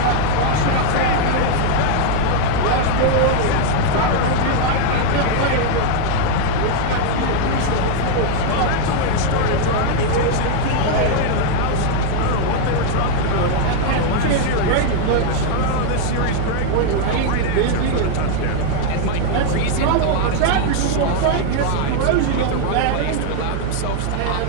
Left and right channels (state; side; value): different; both; correlation 0.00